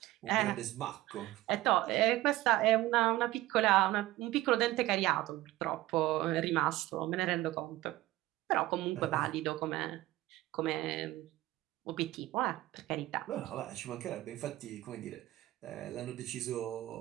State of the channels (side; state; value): left; quieter; 16.8 dB